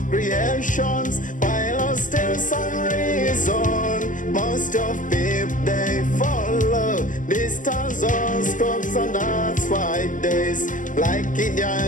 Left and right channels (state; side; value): late; right; 0.38 ms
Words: creations, while still some reason most of people they follow the stars or scopes, and that's why days like